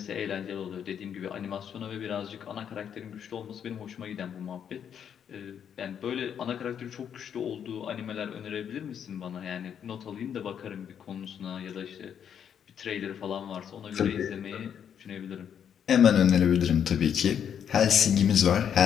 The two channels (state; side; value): quieter; right; 8.5 dB